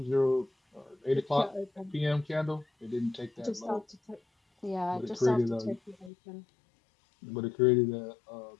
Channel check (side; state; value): right; drops out; at 6.1 s